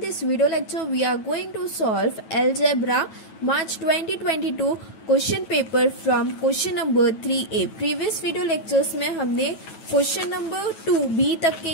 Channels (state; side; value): late; right; 9.2 ms